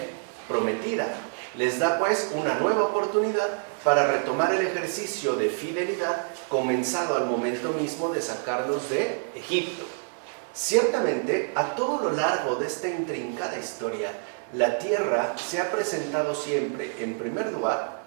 Prometida. Les da pues una nueva oportunidad para retomar el ejercicio de fidelidad comenzado al momento mismo de sacarlos de Egipto. Ciertamente, a todo lo largo de esta intrincada historia, la tierra se ha presentado siempre, en primer lugar,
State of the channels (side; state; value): left; silent; 60 dB below the other